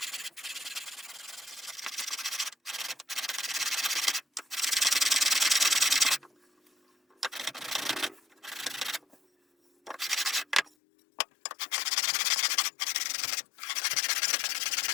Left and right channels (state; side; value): drops out; right; at 10.7 s